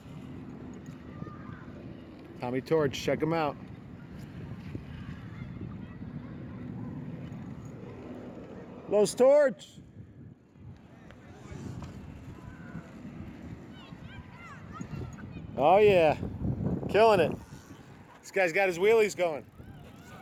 Tommy Torch, check him out. Los Torch. Oh yeah, killing it. This guy's got his wheelies going.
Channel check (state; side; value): identical; both; correlation 1.00